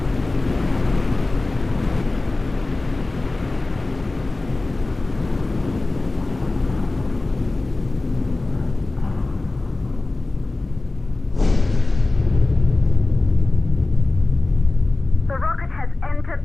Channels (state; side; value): quieter; right; 3.1 dB